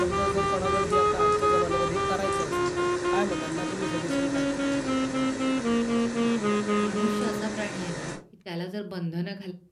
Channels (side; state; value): both; identical; correlation 1.00